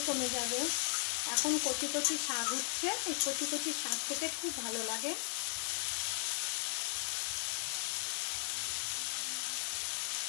কমে যাবে। এখন কচি কচি শাক উঠছে, এই কচি কচি শাক খেতে খুব ভালো লাগে।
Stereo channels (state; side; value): silent; right; 53 dB below the other